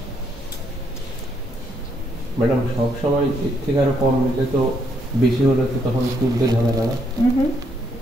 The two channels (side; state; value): both; normal; correlation 0.73